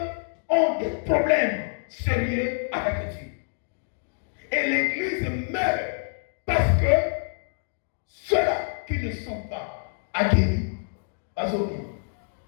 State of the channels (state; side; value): silent; right; digital silence